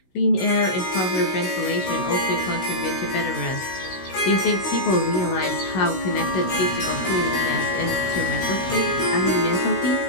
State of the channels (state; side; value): late; right; 16 ms